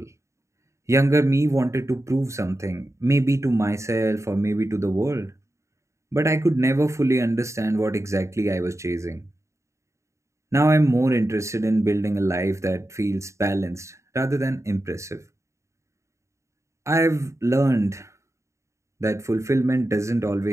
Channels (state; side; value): late; left; 0.14 ms